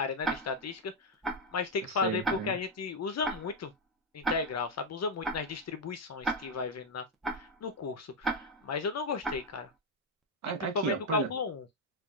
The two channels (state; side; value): normal; both; correlation 0.03